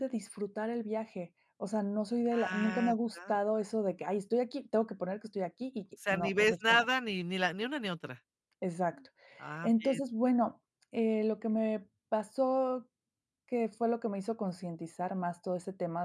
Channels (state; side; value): identical; both; correlation 1.00